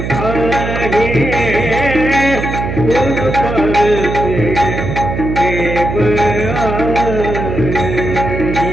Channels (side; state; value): right; noise; hum, 4 dB below the sound